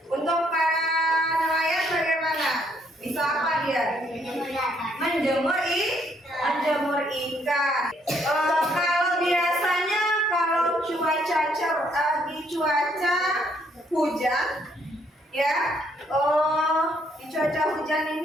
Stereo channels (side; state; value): both; normal; correlation 0.69